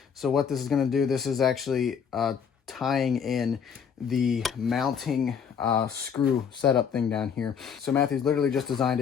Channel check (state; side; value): quieter; right; 7.1 dB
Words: So what this is going to do, this is actually tying in the mounting screw setup thing down here. So Mathews literally just designed